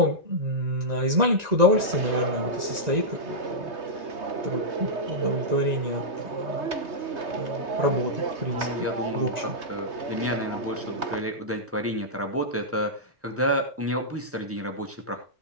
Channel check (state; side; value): late; left; 1.9 ms